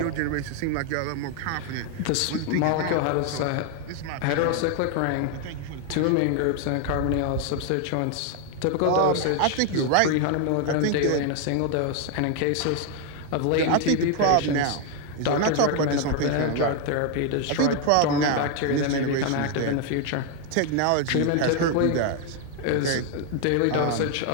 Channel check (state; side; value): different; both; correlation 0.00